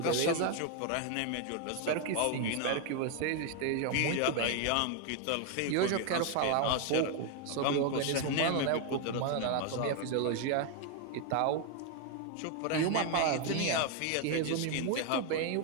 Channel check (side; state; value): both; different; correlation 0.01